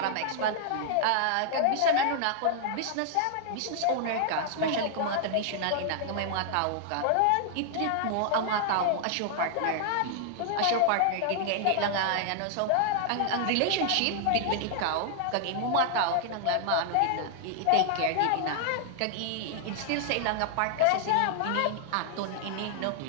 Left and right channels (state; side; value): different; both; correlation -0.01